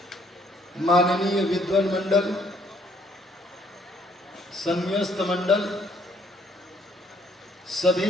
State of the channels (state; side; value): normal; both; correlation 0.65